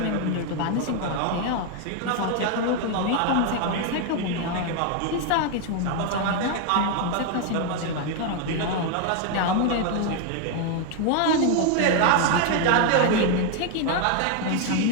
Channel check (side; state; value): both; different; correlation 0.01